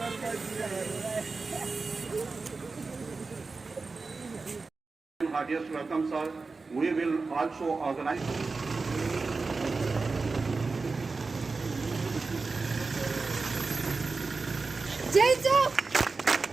welcome, sir. We will also organize. Jai Chowk!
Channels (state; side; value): quieter; left; 4.1 dB